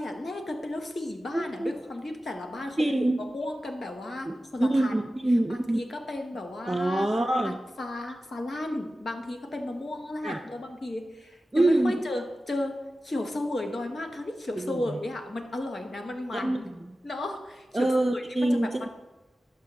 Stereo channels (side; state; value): both; normal; correlation 0.94